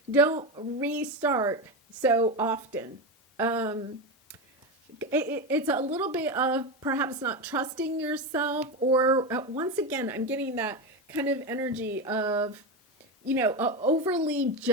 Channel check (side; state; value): both; normal; correlation 0.16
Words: don't restart so often. It's a little bit of perhaps not trusting yourself, or once again, I'm getting that kind of energy of, overly